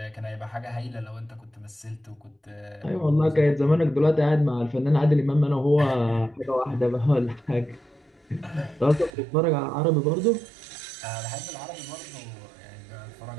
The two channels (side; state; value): left; drops out; at 9.1 s